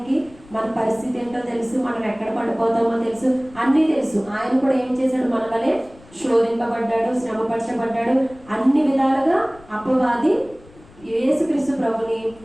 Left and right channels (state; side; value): noise; left; rumble, 24 dB below the sound